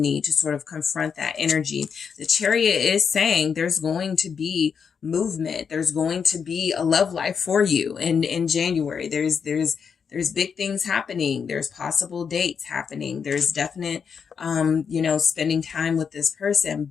to sort of confront that energy. The Chariot is saying there's going to be movement. There's going to be a love life for you in January. There's big things happening. There's possible dates happening. There's definite, spending time with this person,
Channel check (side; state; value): right; quieter; 6.5 dB